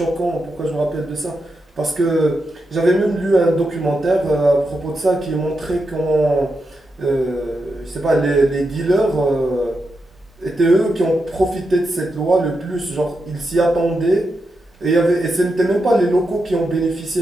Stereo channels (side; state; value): both; normal; correlation 0.86